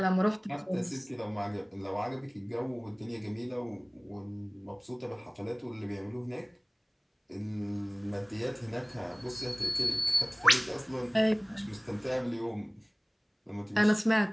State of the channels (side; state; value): both; identical; correlation 1.00